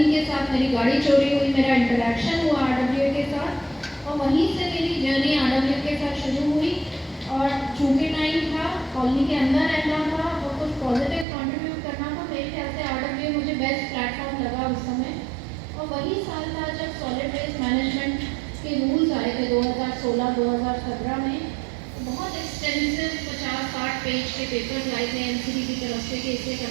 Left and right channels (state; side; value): drops out; left; at 11.2 s